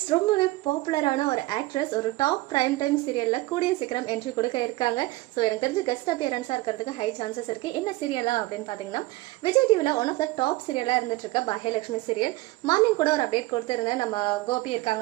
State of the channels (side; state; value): left; quieter; 19.7 dB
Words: ரொம்பவே பாப்புலரான ஒரு ஆக்ட்ரஸ் ஒரு டாப் பிரைம் டைம் சீரியலில் கூடிய சீக்கிரம் என்ட்ரி கொடுக்க இருக்காங்க. ஸோ எனக்கு தெரிஞ்சு கெஸ்ட் அப்பியரன்ஸாக இருக்கிறதுக்கு ஹை சான்சஸ் இருக்குது. என்ன சீரியலா அப்படின்னு பார்த்தீங்கன்னா, விஜய் டிவியில் ஒன் ஆஃப் த டாப் சீரியலாக இருந்துட்டு இருக்க பாக்யலட்சுமி சீரியல். மார்னிங் கூட ஒரு அப்டேட் கொடுத்துருந்தேன். நம்ம கோபி